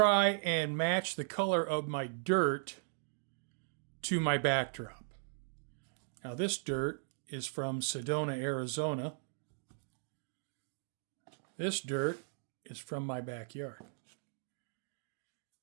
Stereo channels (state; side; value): silent; left; digital silence